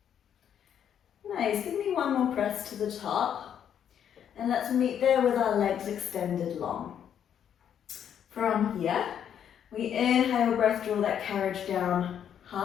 Nice, give me one more press to the top. And let's meet there with our legs extended long. From here, we inhale, breath, draw that carriage down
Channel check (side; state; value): right; quieter; 9.0 dB